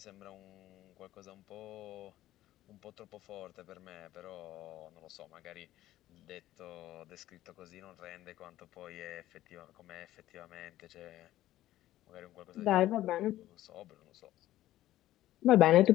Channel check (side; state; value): right; quieter; 14.5 dB